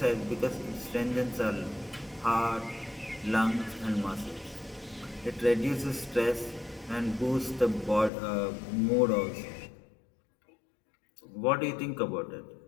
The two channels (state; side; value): drops out; right; at 8.1 s